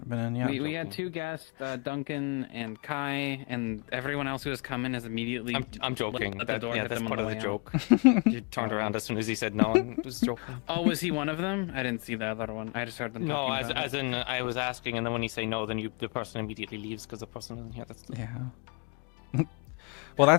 been in yet. We had two guests, Duncan and Kai, and everyone else who has come in has immediately. I'm joking. At the door, yeah, hit that's them on part the of way the out. joke. You turned around as soon as he said no and was joking. Oh, was he one of them? I didn't see the other one. I just heard them No, talking about as in I was asking, and then when you say no, then the person immediately leaves because the person isn't here. That's Yeah. Well,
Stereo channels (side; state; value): right; quieter; 33.6 dB